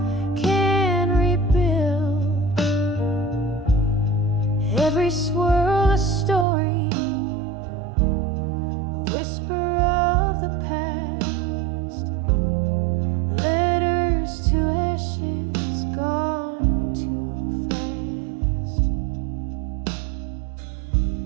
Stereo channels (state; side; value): drops out; left; at 6.5 s